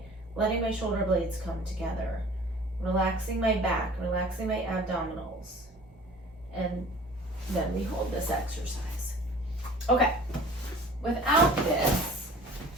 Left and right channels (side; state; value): both; normal; correlation 0.47